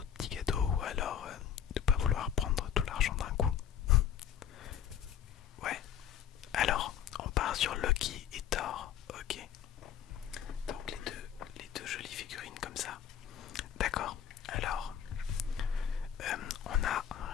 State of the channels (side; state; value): right; quieter; 9.2 dB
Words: petits cadeaux ou alors de ne pas vouloir prendre tout l'argent d'un coup. Ouais, alors on part sur Loki et Thor. Ok, donc les deux jolies figurines comme ça. D'accord, alors on a un